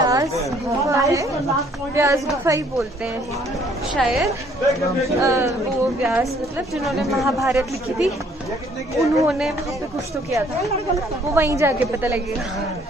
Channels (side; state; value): both; normal; correlation 0.61